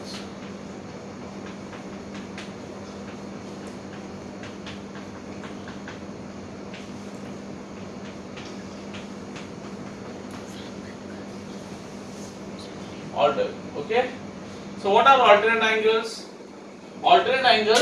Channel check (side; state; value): both; identical; correlation 1.00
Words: Okay. So what are alternate angles? Alternate